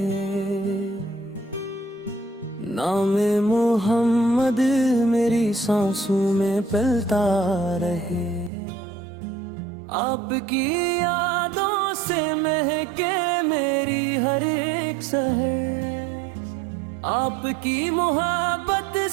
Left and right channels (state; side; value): drops out; left; at 8.5 s